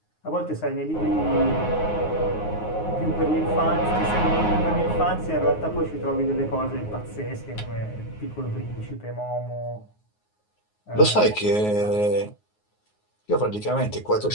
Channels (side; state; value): right; late; 9.5 ms